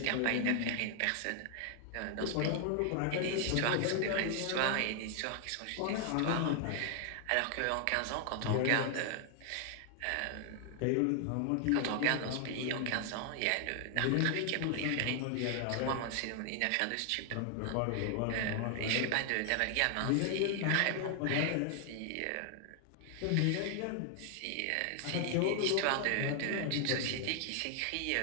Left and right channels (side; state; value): both; different; correlation 0.00